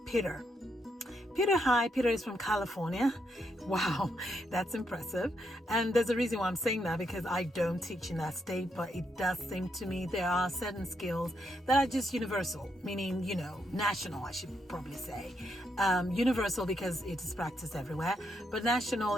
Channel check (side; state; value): both; normal; correlation 0.79